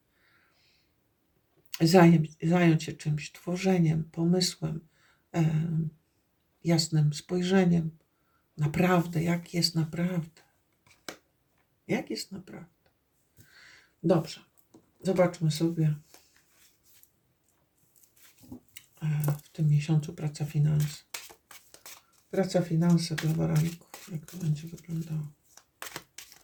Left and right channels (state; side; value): identical; both; correlation 1.00